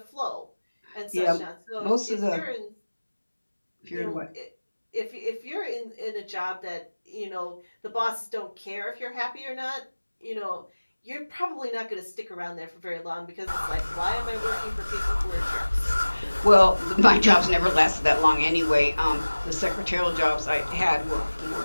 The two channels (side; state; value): both; inverted; correlation -1.00